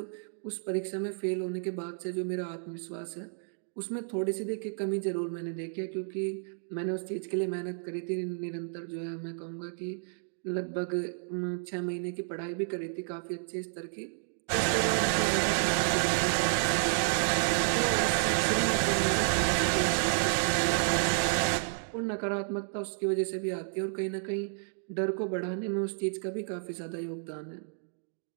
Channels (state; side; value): silent; left; digital silence